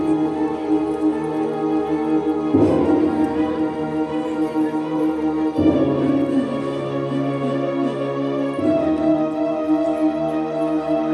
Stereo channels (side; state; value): both; identical; correlation 1.00